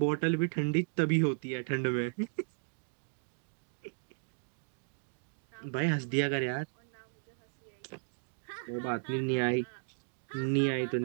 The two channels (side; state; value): left; silent; digital silence